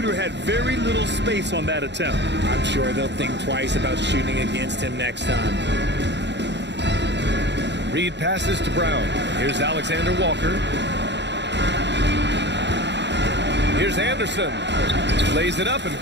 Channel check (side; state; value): left; late; 0.51 ms